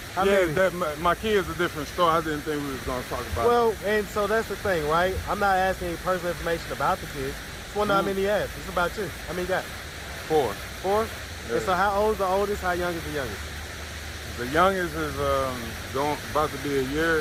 that. My kids a different story. I didn't think we was going to talk about it. Well, and so that's the thing, right? I'm not asking any personal information about the kids. Just wonder how many you have. It's about you. How many you got? 4. 4? Yeah. And so how old is the oldest? How young is the youngest? The youngest is about to be a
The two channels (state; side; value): identical; both; correlation 1.00